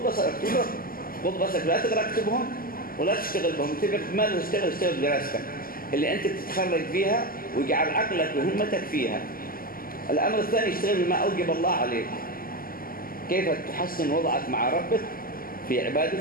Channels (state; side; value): late; right; 0.42 ms